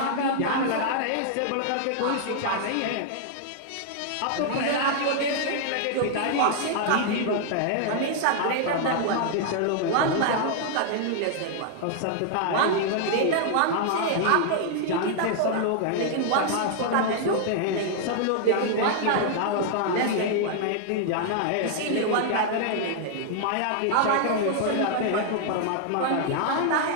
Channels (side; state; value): both; different; correlation 0.00